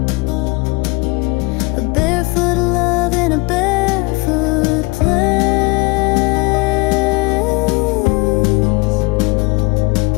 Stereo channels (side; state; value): right; quieter; 24.4 dB